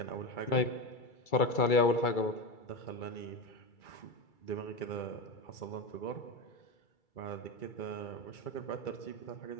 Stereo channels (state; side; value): late; right; 2.3 ms